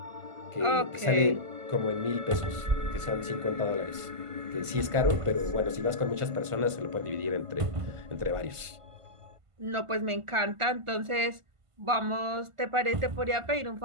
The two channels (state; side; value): late; left; 1.5 ms